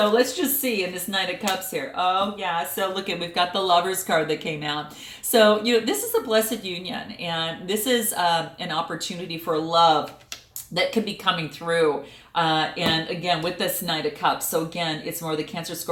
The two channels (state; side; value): identical; both; correlation 1.00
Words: let's just see in this Knight of Cups here. Oh yeah, so look at, we've got the Lovers card that came out. So, this is a blessed union, and this is an opportunity for love that could be coming through. And again, with this Knight of Cups, so again, it's more the Cancer,